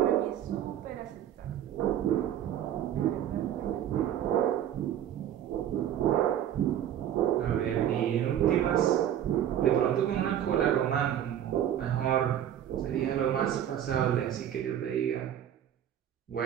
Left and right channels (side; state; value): left; quieter; 10.6 dB